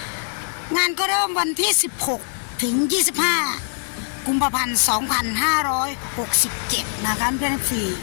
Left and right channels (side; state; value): right; silent; 61 dB below the other